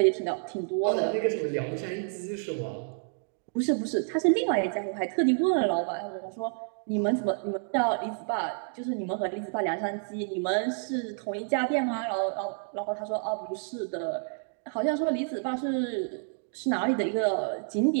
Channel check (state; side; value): silent; left; 58 dB below the other